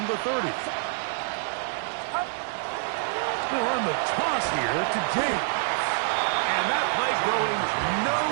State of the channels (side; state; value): left; silent; 60 dB below the other